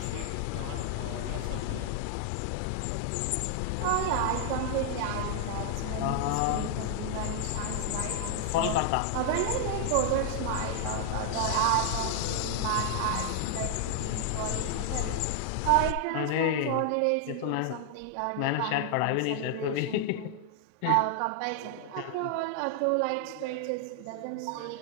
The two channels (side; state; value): both; different; correlation 0.00